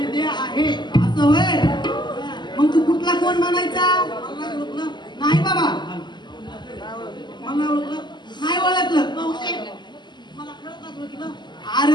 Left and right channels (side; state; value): right; late; 0.21 ms